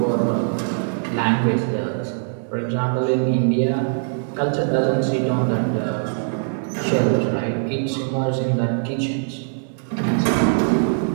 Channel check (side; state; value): left; silent; digital silence